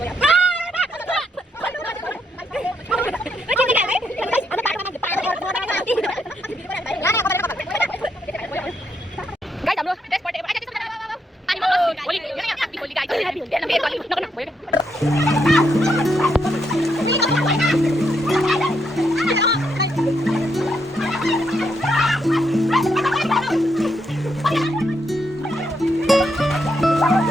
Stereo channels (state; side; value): normal; both; correlation 0.78